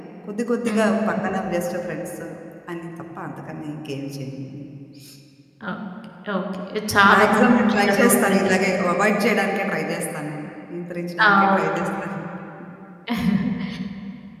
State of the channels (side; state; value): both; identical; correlation 1.00